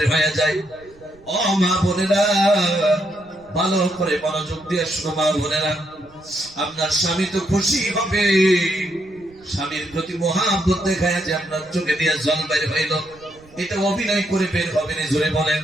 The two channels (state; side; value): noise; right; rumble, 27 dB below the sound